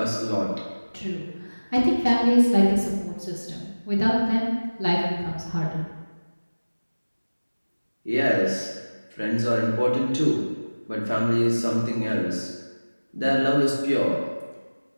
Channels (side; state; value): both; inverted; correlation -1.00